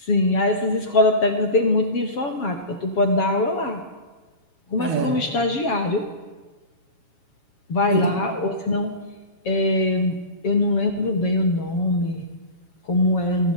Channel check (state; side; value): late; right; 7.2 ms